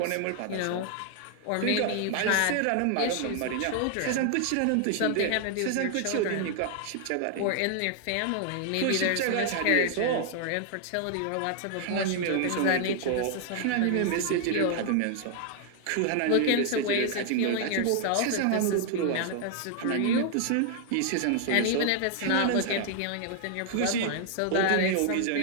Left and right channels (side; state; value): both; different; correlation 0.00